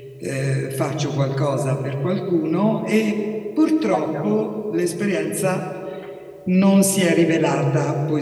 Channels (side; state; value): both; identical; correlation 1.00